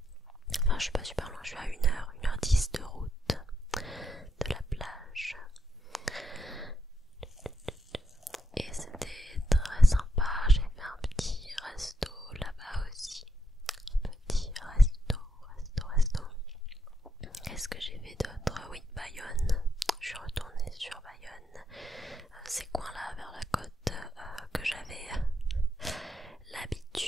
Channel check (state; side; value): normal; both; correlation 0.81